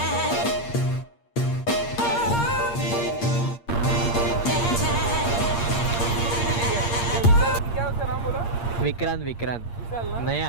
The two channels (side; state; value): right; late; 8.6 ms